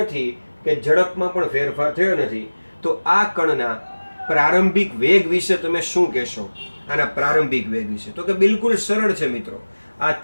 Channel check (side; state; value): both; inverted; correlation -1.00